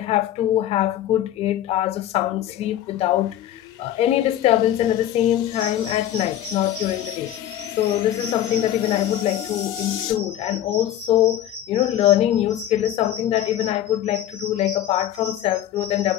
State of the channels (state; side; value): quieter; right; 11.9 dB